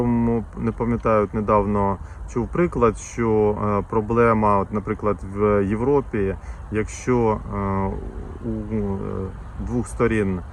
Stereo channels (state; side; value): identical; both; correlation 1.00